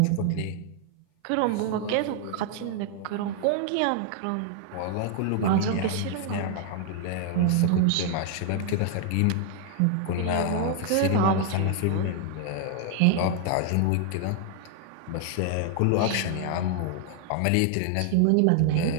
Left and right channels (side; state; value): both; different; correlation 0.00